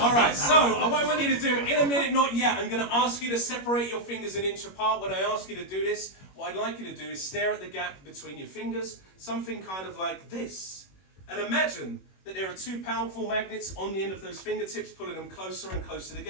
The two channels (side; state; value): right; late; 21 ms